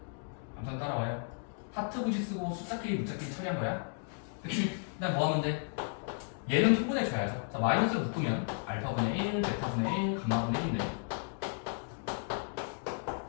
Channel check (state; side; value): silent; right; 55 dB below the other